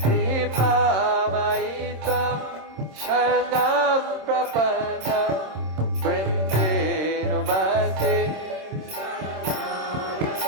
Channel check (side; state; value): left; late; 26 ms